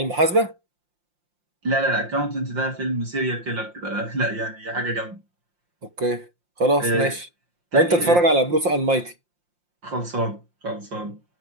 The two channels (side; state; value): left; late; 5.7 ms